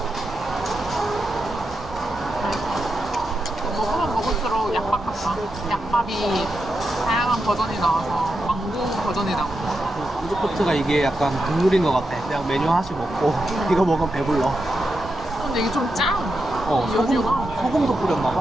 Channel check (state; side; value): normal; both; correlation 0.87